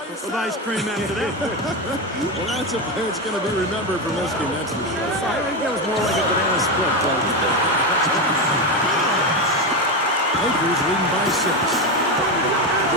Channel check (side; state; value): both; normal; correlation 0.14